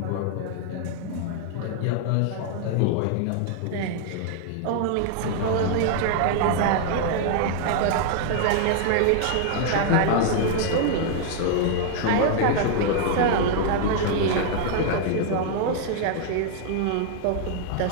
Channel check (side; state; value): both; different; correlation 0.00